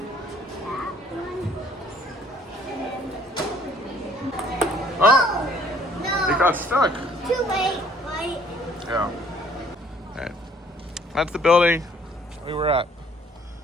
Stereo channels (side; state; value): both; normal; correlation 0.59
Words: That one. Oh, No. it got stuck. Too late, right? Yeah. All right. That's the building we were at.